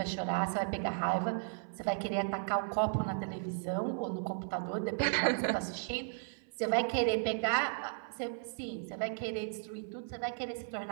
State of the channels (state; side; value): silent; left; 54 dB below the other